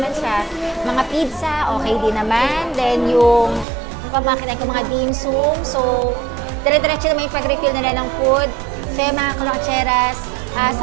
siya. Mga pizza, okay din naman. Then, yung pamakinan ko mga dim sum. So, dire-diretso naman yung pag-refill nila ng food. So, mga kalotseras,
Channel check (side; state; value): left; drops out; at 3.7 s